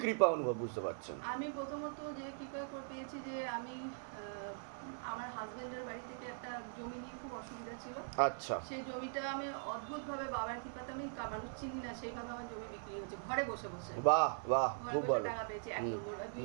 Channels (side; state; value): left; silent; 50 dB below the other